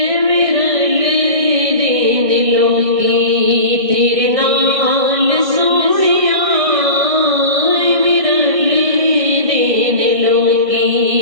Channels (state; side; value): late; left; 1.6 ms